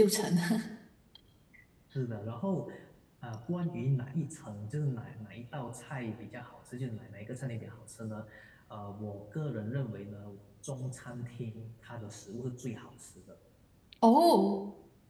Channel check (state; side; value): identical; both; correlation 1.00